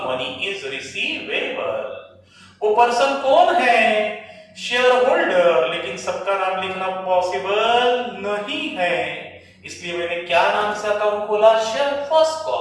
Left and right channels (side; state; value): both; identical; correlation 1.00